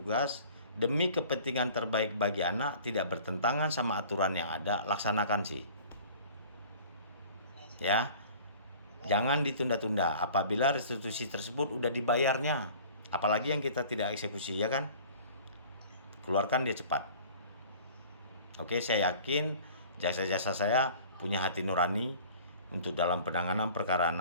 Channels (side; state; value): both; inverted; correlation -0.47